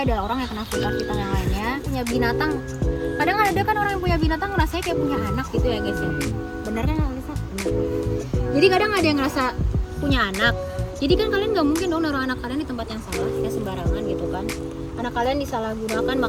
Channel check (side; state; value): both; identical; correlation 1.00